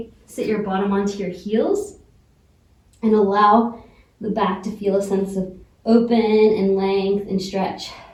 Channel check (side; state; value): both; identical; correlation 1.00